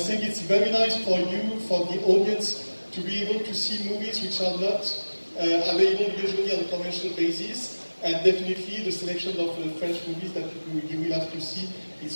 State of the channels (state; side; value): inverted; both; correlation -1.00